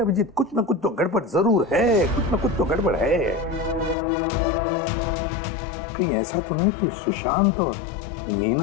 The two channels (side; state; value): right; drops out; at 4.0 s